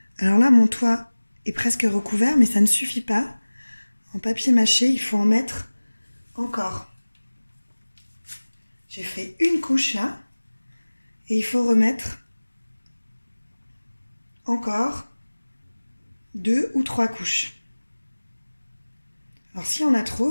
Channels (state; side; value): inverted; both; correlation -1.00